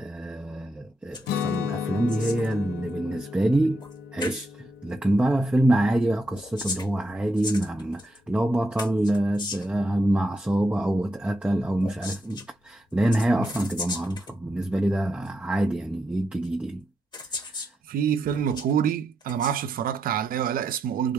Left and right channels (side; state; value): both; normal; correlation 0.83